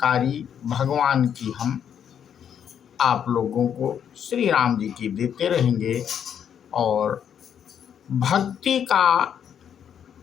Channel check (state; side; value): quieter; right; 8.6 dB